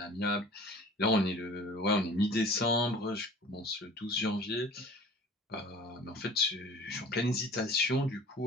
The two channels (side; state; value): both; normal; correlation 0.44